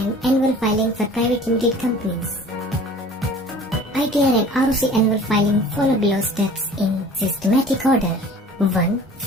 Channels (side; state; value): both; normal; correlation 0.46